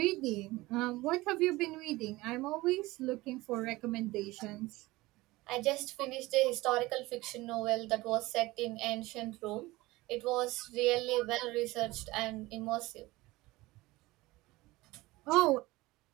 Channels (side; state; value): left; quieter; 20.0 dB